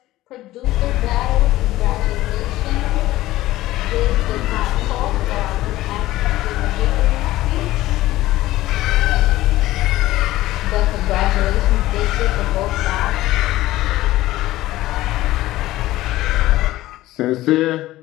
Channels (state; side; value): quieter; right; 16.3 dB